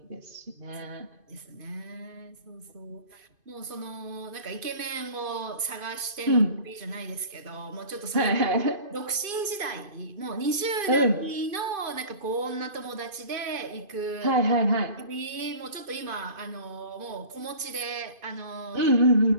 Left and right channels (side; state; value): left; late; 2.5 ms